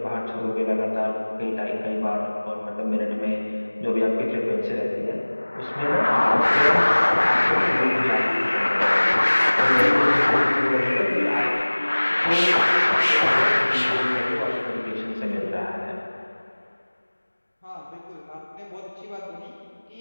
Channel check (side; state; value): both; inverted; correlation -1.00